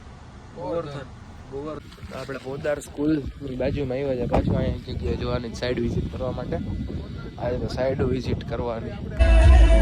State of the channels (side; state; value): both; identical; correlation 1.00